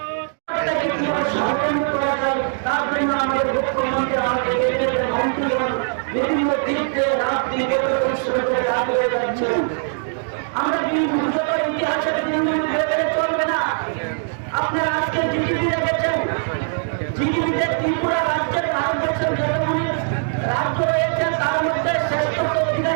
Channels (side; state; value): left; silent; digital silence